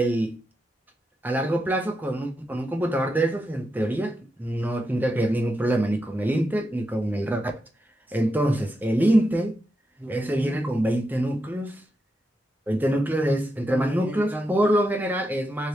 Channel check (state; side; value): normal; both; correlation 0.86